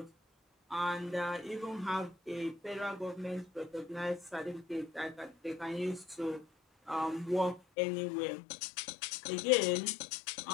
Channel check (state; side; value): drops out; right; at 7.6 s